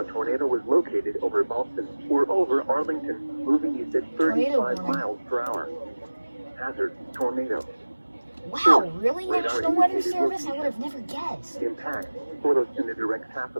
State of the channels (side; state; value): both; inverted; correlation -1.00